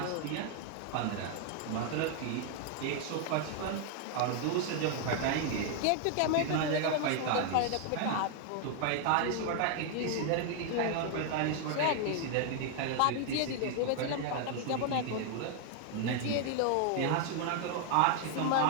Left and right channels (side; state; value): both; different; correlation 0.00